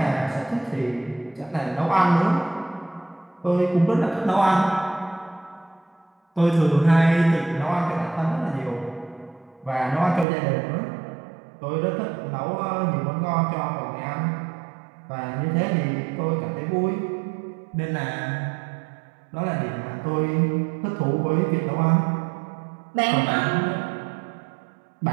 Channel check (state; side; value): drops out; left; at 10.2 s